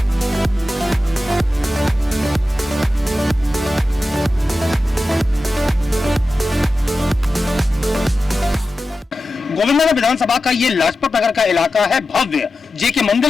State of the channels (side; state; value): both; normal; correlation 0.93